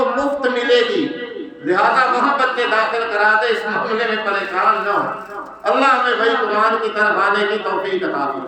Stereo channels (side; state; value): both; identical; correlation 1.00